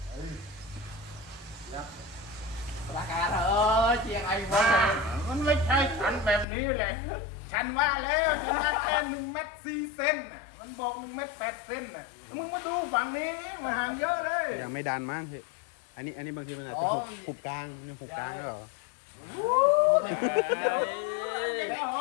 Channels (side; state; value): right; drops out; at 6.5 s